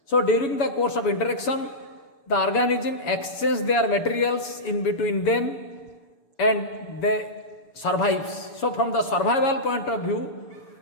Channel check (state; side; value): late; right; 7.1 ms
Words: So during the course of interaction, the organism exchange their materials in between them and they survives. So from the survival point of view,